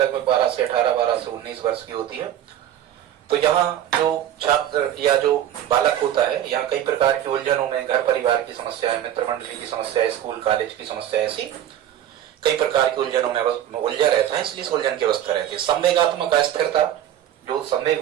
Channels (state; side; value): quieter; left; 11.2 dB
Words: 12 से 18, 12 से 19 वर्ष की होती है, तो यहाँ जो छात्र या जो बालक होता है, यहाँ कई प्रकार की उलझनों में, घर परिवार की समस्याएं, मित्र मंडली की समस्या, स्कूल कॉलेज की समस्या, ऐसी कई प्रकार की उलझनों में उलझा रहता है, इसलिए इस उलझन की अवस्था रहती है। संवेगात्मक अस्थिरता, जो संवेग